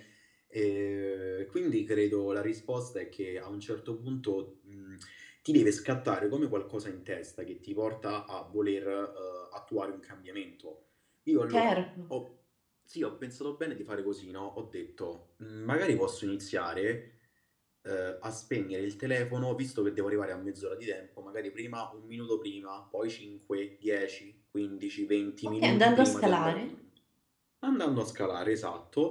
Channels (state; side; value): identical; both; correlation 1.00